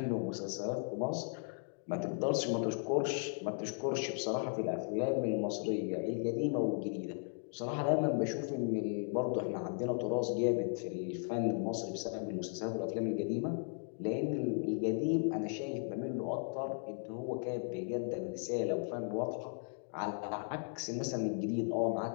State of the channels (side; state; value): right; silent; 54 dB below the other